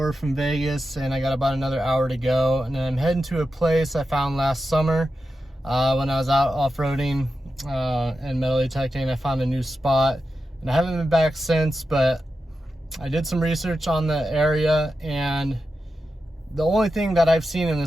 from Vegas and I got about another hour to go. And I'm heading to a place I found last summer when I was out off-roading and metal detecting. I found a new spot and I haven't been back since, but I did some research on the area and the only thing that I've seen in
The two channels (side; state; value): both; normal; correlation 0.90